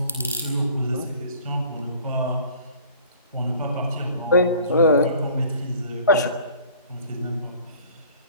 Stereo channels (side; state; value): both; inverted; correlation -0.50